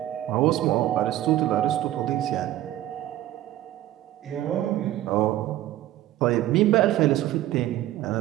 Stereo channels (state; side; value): quieter; left; 14.1 dB